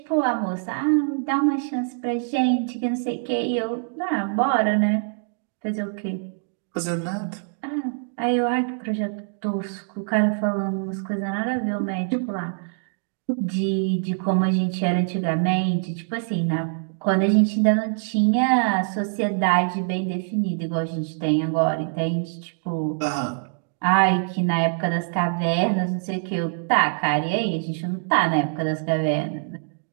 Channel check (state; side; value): silent; left; digital silence